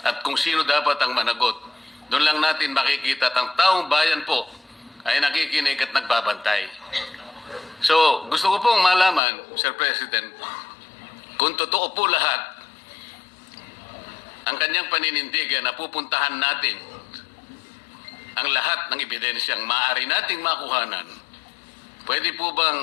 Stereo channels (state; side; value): drops out; right; at 9.2 s